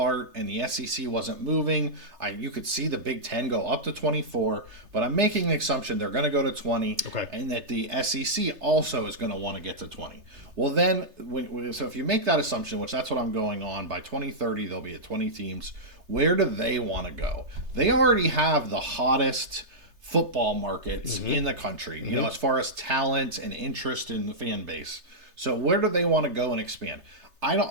and the SEC wasn't moving, you could see the Big Ten go up to 24. But I'm making the assumption they're going to go to 20, and that the SEC also is going to want to get to 20. Well, then, so if you make that assumption, which that's what I'm going on, by 2030 they'll be at 20 teams. Where do they want to go? They already have the hottest football markets in the country, you know, as far as talent and interest in the fan base. So where do they want to go and expand?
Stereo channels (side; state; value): left; late; 3.3 ms